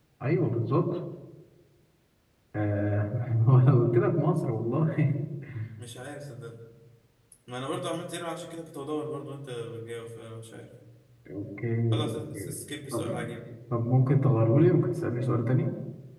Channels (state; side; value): identical; both; correlation 1.00